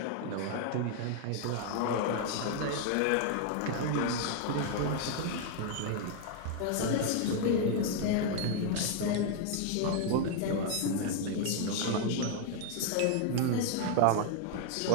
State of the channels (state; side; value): different; both; correlation 0.00